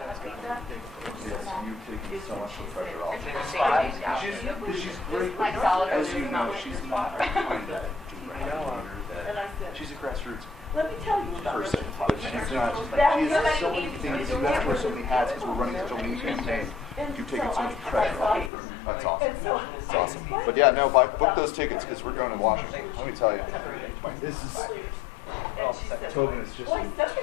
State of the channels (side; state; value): right; drops out; at 18.5 s